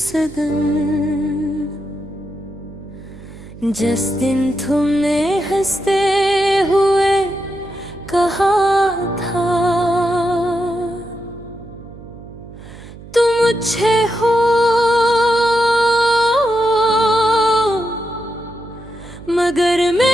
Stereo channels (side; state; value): right; noise; hum, 17 dB below the sound